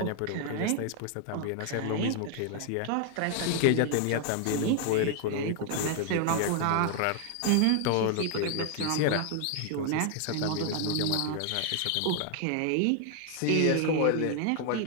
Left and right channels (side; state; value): both; different; correlation 0.00